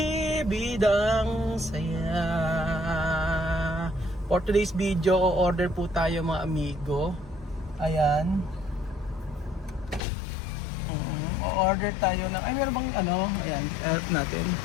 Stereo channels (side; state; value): right; drops out; at 10.0 s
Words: Bidang Saya. For today's video, order po tayo mga amigo. Ayan. O-order tayo ng, ay meron bang ano, ayan, natin.